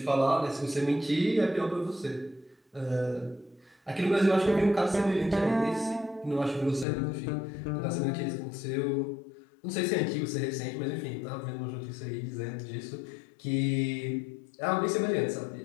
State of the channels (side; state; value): right; drops out; at 6.9 s